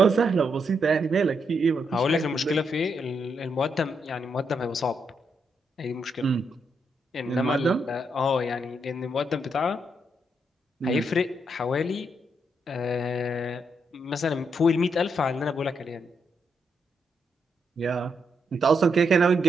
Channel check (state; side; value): normal; both; correlation 0.79